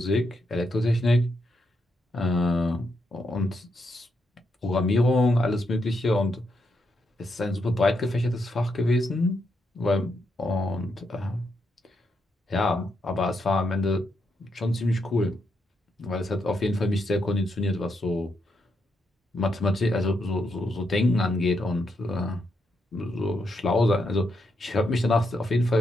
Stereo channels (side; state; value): both; normal; correlation 0.81